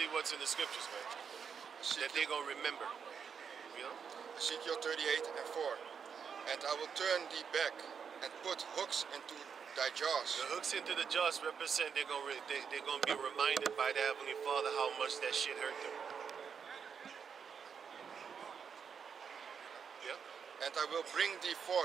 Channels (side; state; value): left; quieter; 6.7 dB